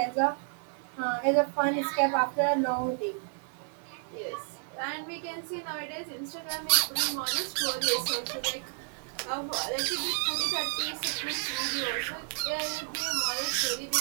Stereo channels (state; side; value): silent; left; 55 dB below the other